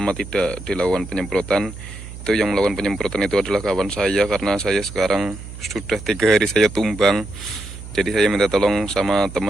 tidak dilakukan penyemprotan. Itu yang melakukan penyemprotan itu adalah kawan saya, karena saya sekarang sudah 3 hari saya tumbang. Jadi saya minta tolong sama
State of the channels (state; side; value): noise; right; hum, 13 dB below the sound